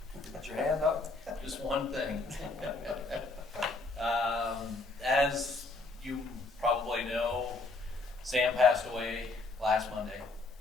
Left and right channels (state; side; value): quieter; right; 3.4 dB